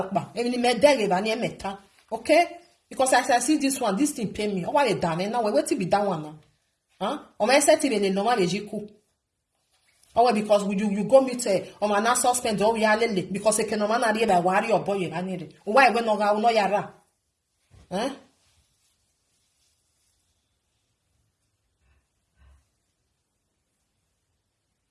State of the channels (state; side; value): identical; both; correlation 1.00